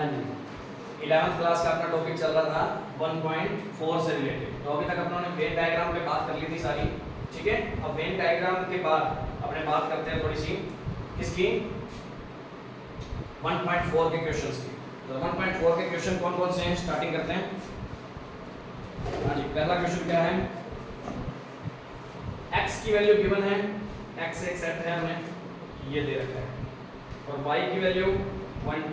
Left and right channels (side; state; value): both; identical; correlation 1.00